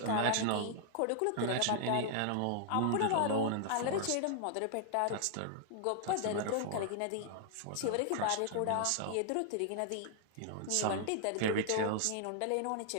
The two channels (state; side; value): different; both; correlation -0.01